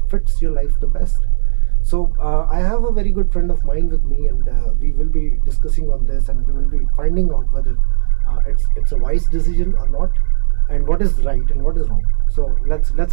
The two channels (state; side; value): silent; left; 68 dB below the other